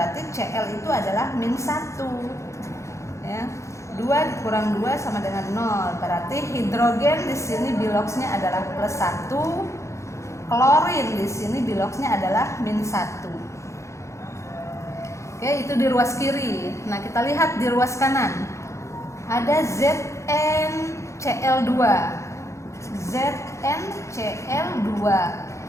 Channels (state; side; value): late; right; 0.14 ms